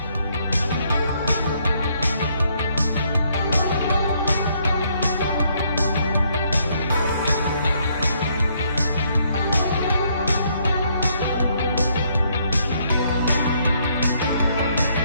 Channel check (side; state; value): both; inverted; correlation -0.70